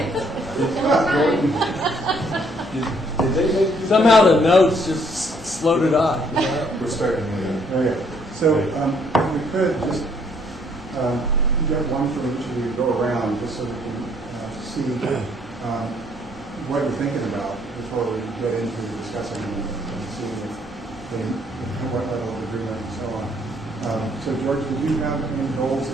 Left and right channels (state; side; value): normal; both; correlation 0.66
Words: Did they make you- Somehow the notes just slowed it on. We're starting again. Okay, so we could just get one from each of you, go around, just so we can see what you're thinking about before we get into discussing and seeing what level of agreement and so on. So George, did you have any goals